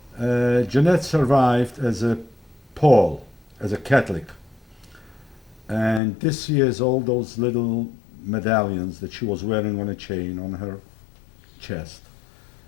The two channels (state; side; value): drops out; right; at 6.0 s